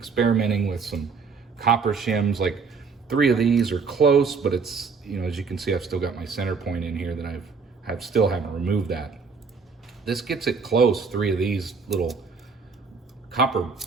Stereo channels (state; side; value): quieter; left; 5.1 dB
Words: with some copper shims, like 3 of these are close, but it's you know, as you can see, I've still got my center point in here that still haven't removed that. This gets it close, 3 of these little copper